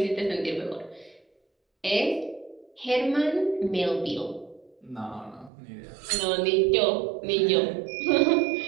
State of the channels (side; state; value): left; drops out; at 5.5 s